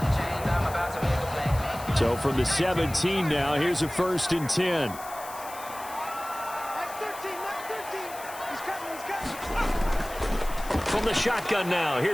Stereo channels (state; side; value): noise; left; hiss, 15 dB below the sound